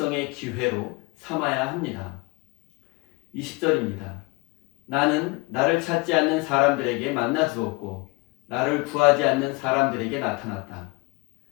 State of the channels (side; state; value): right; quieter; 26.5 dB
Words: 기회로 삼아야 합니다. 20절입니다. 나는 나를 찾지 않는 사람들에게 만나 주었고 나를 구하지 않는 사람들에게 나타났다.